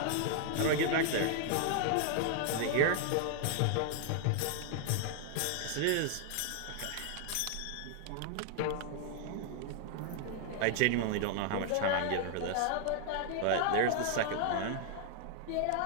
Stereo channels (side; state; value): both; different; correlation 0.00